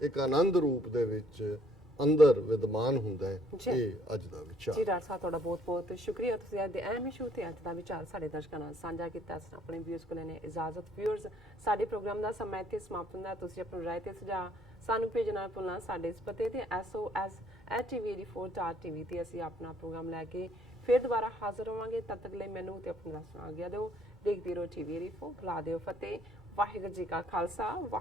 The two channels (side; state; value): both; normal; correlation 0.63